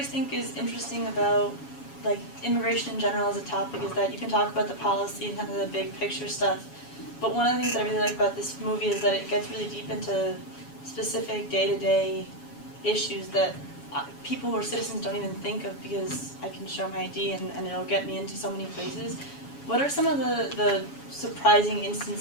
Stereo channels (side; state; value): right; late; 7.2 ms